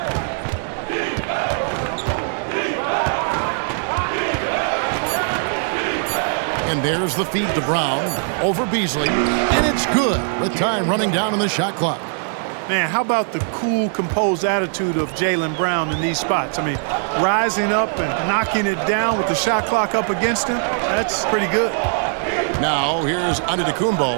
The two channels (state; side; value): silent; left; 58 dB below the other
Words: And there's the feed to Brown over Beasley. And it's good with time running down on the shot clock. Man, how about the cool, composed attitude of Jaylen Brown in these spots? I mean, rising up and knocking it down with the shot clock up against him, that's pretty good. Now, here's